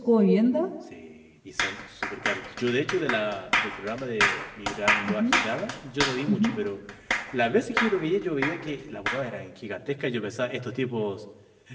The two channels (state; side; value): identical; both; correlation 1.00